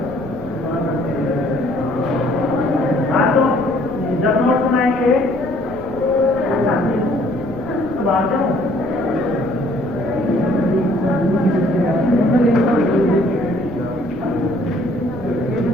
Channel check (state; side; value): noise; left; rumble, 18 dB below the sound